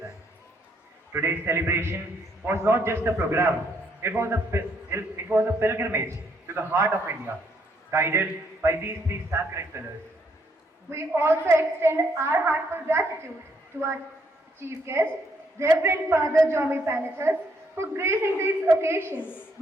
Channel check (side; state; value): both; normal; correlation 0.71